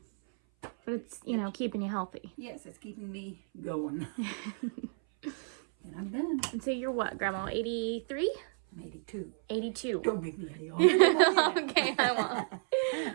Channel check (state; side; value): silent; left; 56 dB below the other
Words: But it's, keeping you healthy. Yes, it's keeping me going. And I'm done. And so you're what, Grandma? 83? I'm 82. 82. Don't make me any older. Okay, I